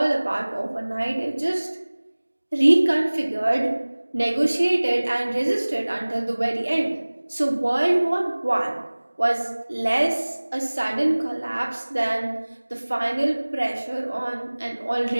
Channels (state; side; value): inverted; both; correlation -1.00